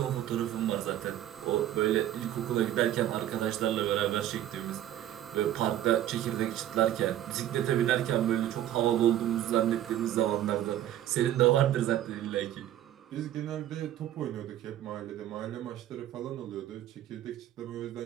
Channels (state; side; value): quieter; left; 12.3 dB